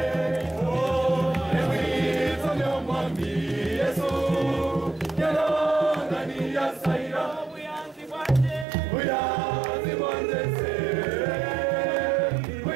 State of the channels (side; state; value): left; drops out; at 8.7 s